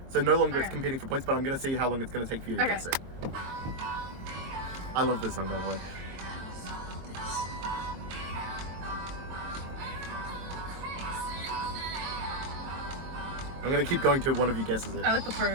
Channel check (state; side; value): late; left; 23 ms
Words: So no longer it's Okay. competing for points, but I'm gonna see how long it's gonna take for you to Okay. guess it. I love this song, by the way. I'm gonna keep going till one of you guesses it. I like the